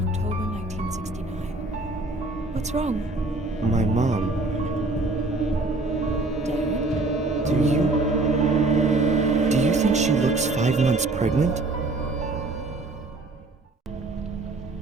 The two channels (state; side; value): quieter; left; 3.1 dB